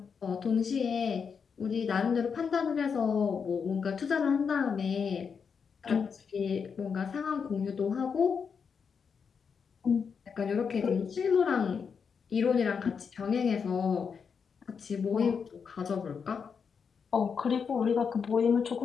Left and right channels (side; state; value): right; quieter; 6.2 dB